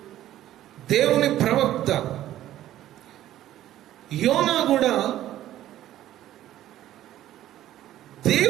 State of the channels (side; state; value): left; quieter; 13.3 dB